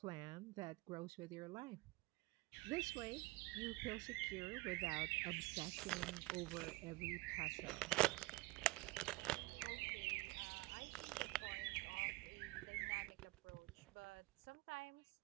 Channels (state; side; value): quieter; left; 22.0 dB